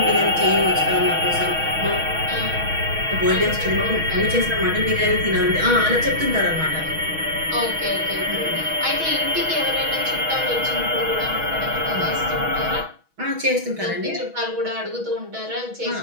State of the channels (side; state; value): left; late; 6.2 ms